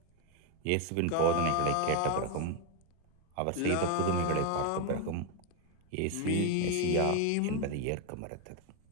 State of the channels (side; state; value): both; different; correlation 0.01